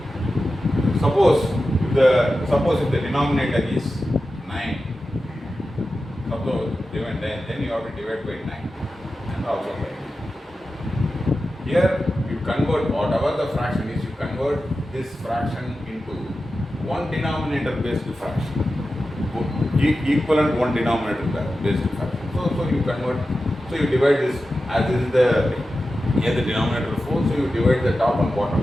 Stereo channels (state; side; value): normal; both; correlation 0.92